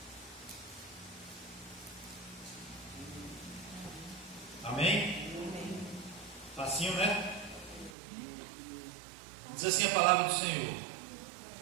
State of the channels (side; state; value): left; drops out; at 7.9 s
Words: Amém? Facinho, né? Diz assim a palavra do Senhor: